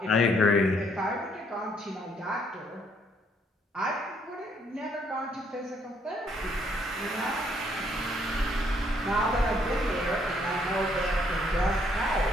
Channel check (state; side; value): normal; both; correlation 0.69